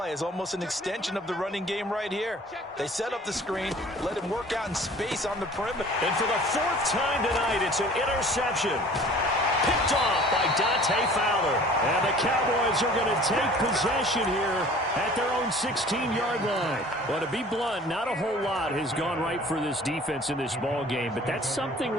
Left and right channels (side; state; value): both; normal; correlation 0.48